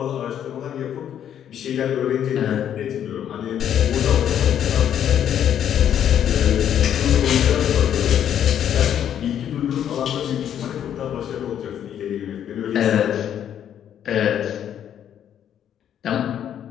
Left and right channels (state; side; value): quieter; right; 9.8 dB